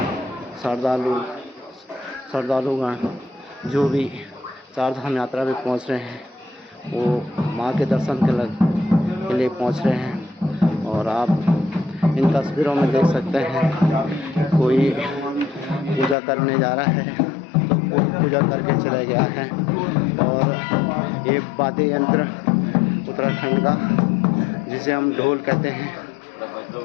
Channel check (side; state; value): right; drops out; at 16.2 s